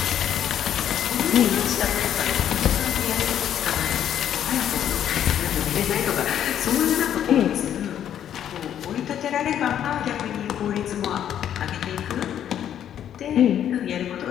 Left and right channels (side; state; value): right; quieter; 10.1 dB